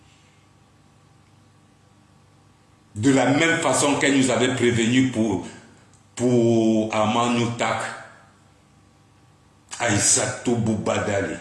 de la même façon qu'elle nous avait prévenu pour Amanoutak, Aïssatou Boubadali.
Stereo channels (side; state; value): both; identical; correlation 1.00